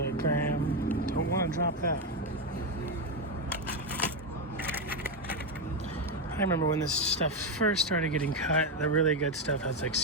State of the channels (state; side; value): normal; both; correlation 0.08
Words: a gram. Don't want to drop that. I remember when this stuff first started getting cut, the really good stuff has like